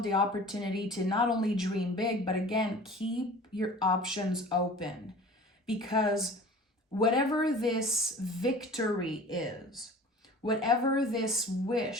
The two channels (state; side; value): normal; both; correlation 0.42